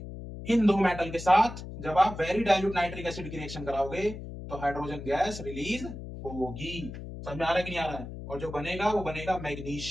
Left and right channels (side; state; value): left; noise; hum, 10 dB below the sound